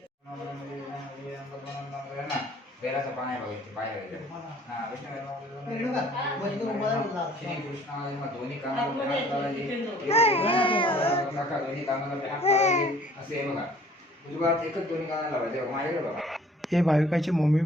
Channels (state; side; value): normal; both; correlation 0.54